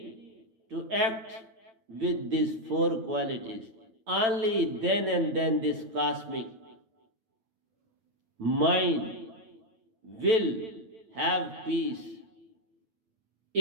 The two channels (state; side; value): late; left; 8.9 ms